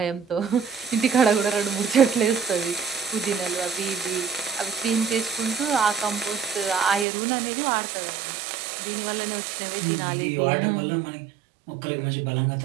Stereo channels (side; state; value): left; drops out; at 7.1 s